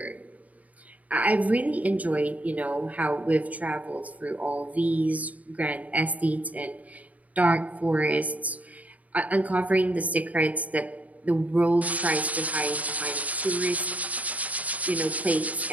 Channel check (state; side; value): late; left; 0.072 ms